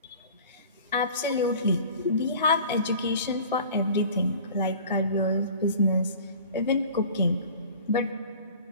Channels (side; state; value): both; inverted; correlation -0.43